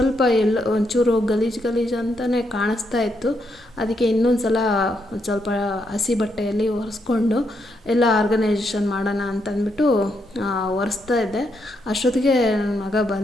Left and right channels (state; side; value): normal; both; correlation 0.79